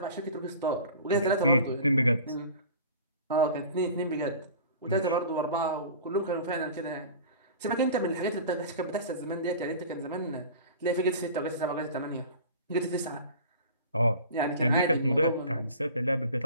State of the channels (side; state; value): both; inverted; correlation -0.40